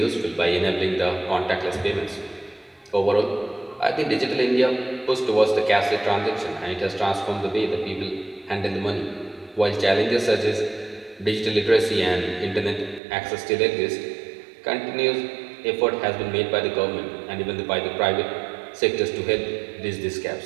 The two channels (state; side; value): drops out; left; at 13.0 s